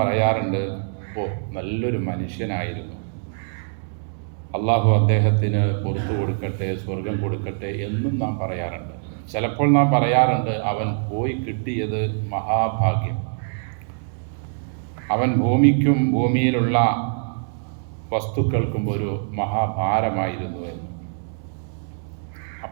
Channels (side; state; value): left; silent; digital silence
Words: ഓ നല്ലൊരു മനുഷ്യനായിരുന്നു, അള്ളാഹു അദ്ദേഹത്തിന് പുറത്തു കൊടുക്കട്ടെ, സ്വർഗം കൊടുക്കട്ടെ എന്നും നാം പറയാറുണ്ട്. ചിലപ്പോൾ നാം പറയാറുണ്ട്, അവൻ പോയി കിട്ടിയത് മഹാഭാഗ്യം, അവൻ ഭൂമിക്കും ഭൂമിയിലുള്ള വസ്തുക്കൾക്കും ഒരു മഹാഭാരമായിരുന്നു എന്ന്.